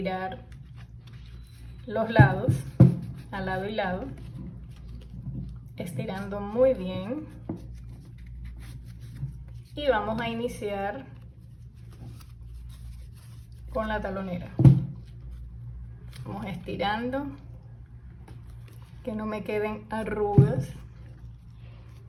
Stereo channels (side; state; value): both; identical; correlation 1.00